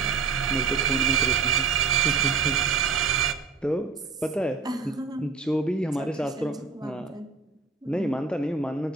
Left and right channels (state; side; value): quieter; left; 5.0 dB